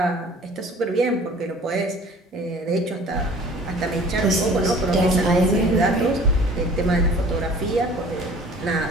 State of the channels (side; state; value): both; normal; correlation 0.48